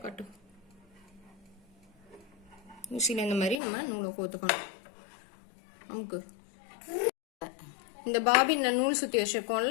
காட்டு. ஊசியில் இந்த மாதிரி நம்ம நூலை கோத்துக்கணும். நமக்கு இந்த பாபின்ல நூல் சுத்தி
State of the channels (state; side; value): drops out; right; at 3.6 s